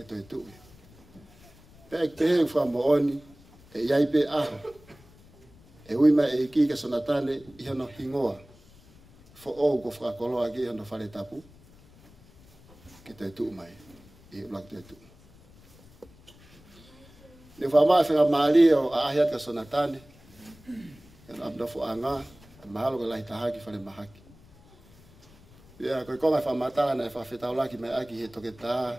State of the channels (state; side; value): noise; left; rumble, 25 dB below the sound